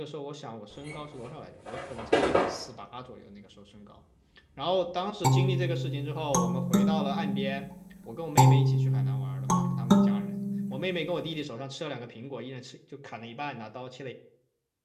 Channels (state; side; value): identical; both; correlation 1.00